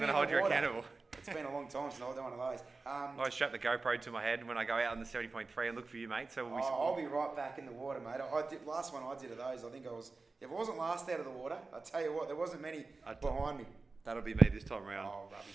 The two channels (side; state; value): left; quieter; 3.8 dB